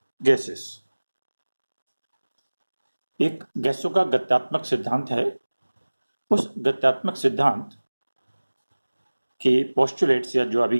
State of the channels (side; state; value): both; inverted; correlation -1.00